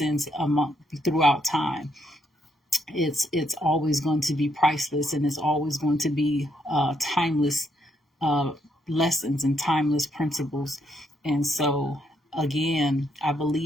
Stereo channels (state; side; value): normal; both; correlation 0.75